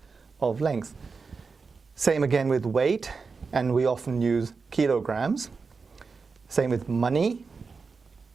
of length. Same again with weight, and we often use kilograms. Same with money,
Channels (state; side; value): quieter; left; 4.8 dB